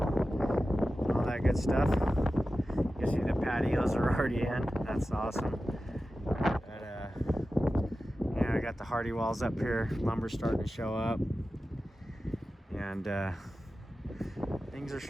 all that good stuff. You can see the patios are already in. That's awesome. I got the hardy walls up here, lumber starting to show up, and things are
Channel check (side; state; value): both; normal; correlation 0.94